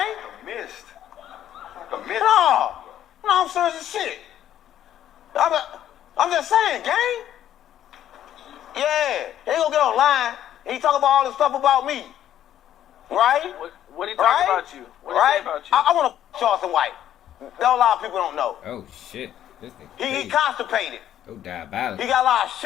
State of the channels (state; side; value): quieter; right; 11.3 dB